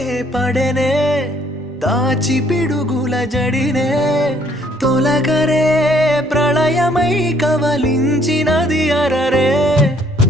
పడెనే దాచి పిడుగుల జడినే తొలగరే ప్రళయమై కవలించినది అరరే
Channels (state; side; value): normal; both; correlation 0.64